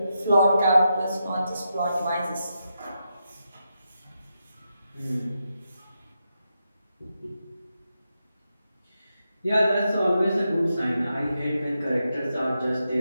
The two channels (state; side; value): inverted; both; correlation -0.86